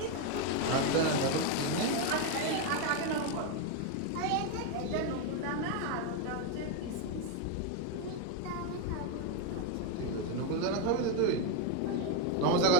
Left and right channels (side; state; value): both; different; correlation 0.02